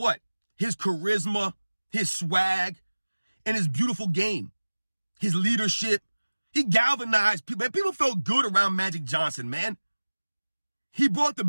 His charisma, his swag, and his beautiful game. His leadership. He galvanized people. Man, people felt good around Magic Johnson, man. He brought the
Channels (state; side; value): inverted; both; correlation -1.00